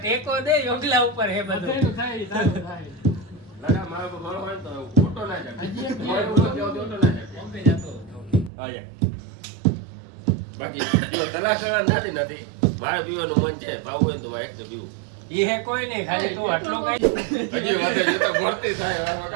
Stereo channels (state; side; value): drops out; left; at 8.5 s